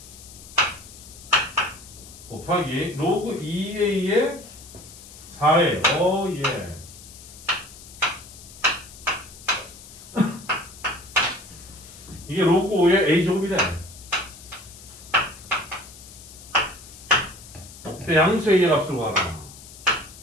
곱하기 로그 2a의 4a 예. 이게 로그 5의 a제곱이래. 그때 양수 a의 값을 구하라.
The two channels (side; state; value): left; noise; hiss, 18 dB below the sound